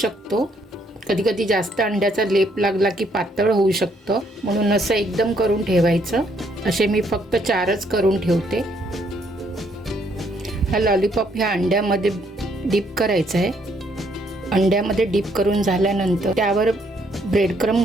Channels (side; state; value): both; normal; correlation 0.69